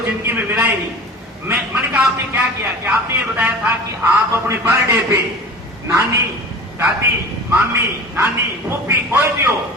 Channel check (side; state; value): both; normal; correlation 0.37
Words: जिंदगी में मिला ही नहीं। मैंने कहा आपने क्या किया? कि आपने ये बताया था कि आप अपने बर्थडे पे नानी, दादी, मामी, नानी, फूफी कोई भी हो,